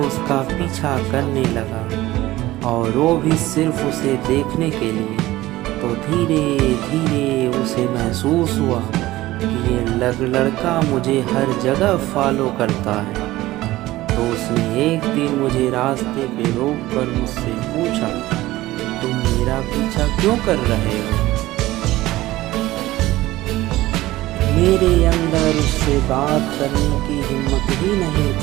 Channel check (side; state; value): left; quieter; 17.1 dB